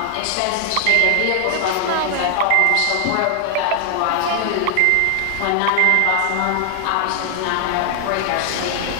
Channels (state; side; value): different; both; correlation 0.00